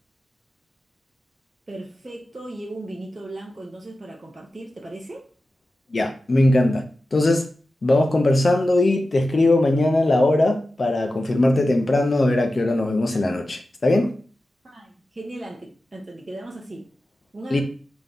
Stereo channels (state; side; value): normal; both; correlation 0.94